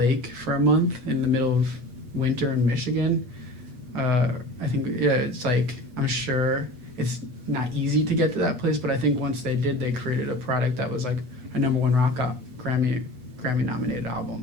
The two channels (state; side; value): late; left; 8.3 ms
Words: for a month in the middle of winter in Michigan, I think, it's like, I'm sure it's not easy to get to that place, but I think once they did, they created a product that was like a #1 rock Grammy nominated